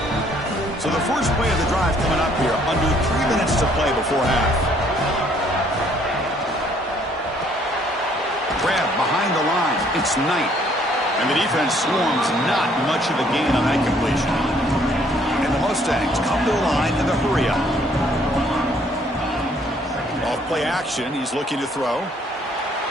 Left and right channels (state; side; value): normal; both; correlation 0.63